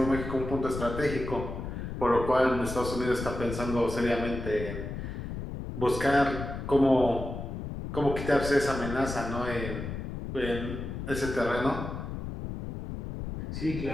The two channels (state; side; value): noise; left; rumble, 6 dB below the sound